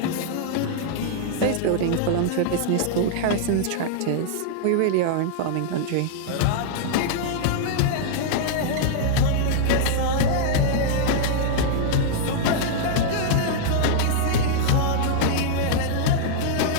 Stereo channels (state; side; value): different; both; correlation -0.01